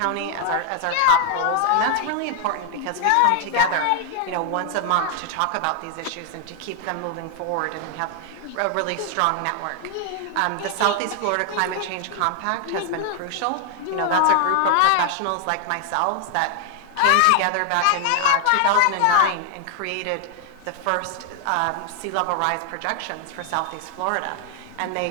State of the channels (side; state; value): both; different; correlation 0.00